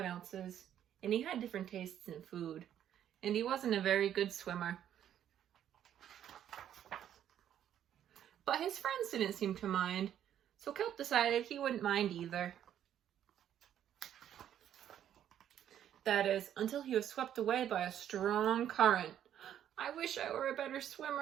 else's, and he had different tastes in food, and he wasn't a very good swimmer. But his friends didn't seem to mind, so Kelp decided he wouldn't mind either. That is, until he was swept away by a strong current. I wish I were a better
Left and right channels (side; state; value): left; quieter; 10.4 dB